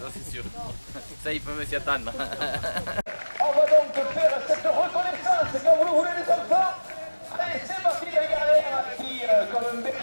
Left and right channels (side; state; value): both; inverted; correlation -1.00